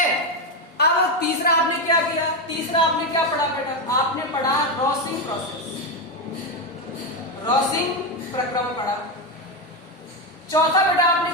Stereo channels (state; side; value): normal; both; correlation 0.09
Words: अब तीसरा आपने क्या किया, तीसरा आपने क्या पढ़ा बेटा, आपने पढ़ा रॉसिंग प्रोसेस, रॉसिंग प्रक्रम पढ़ा। चौथा बेटा आपने